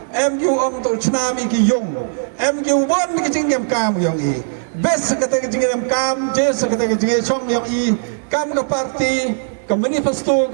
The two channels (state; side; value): silent; left; digital silence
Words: em jo ang to chna mi ki yung em jo bon ki jing yam kam yang bes kata ke jing yam kam jes kata ke jing chom yang kam ka parti ka manifesto